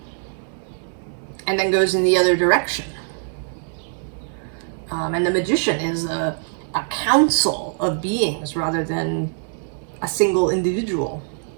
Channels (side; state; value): left; silent; 64 dB below the other